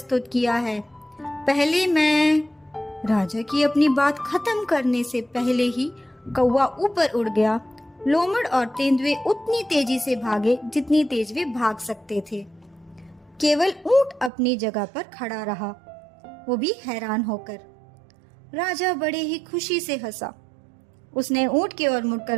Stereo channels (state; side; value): drops out; left; at 14.3 s